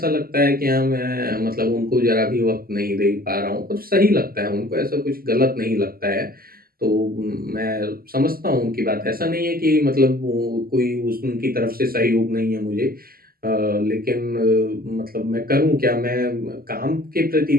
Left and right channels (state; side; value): late; left; 0.43 ms